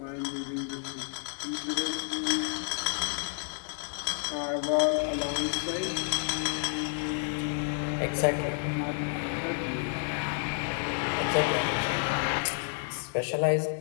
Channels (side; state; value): right; silent; 58 dB below the other